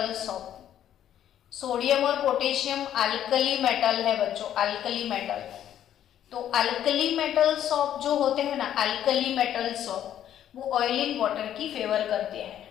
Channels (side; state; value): right; quieter; 10.8 dB